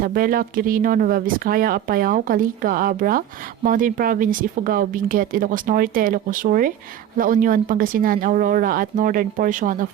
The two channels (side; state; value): left; quieter; 10.7 dB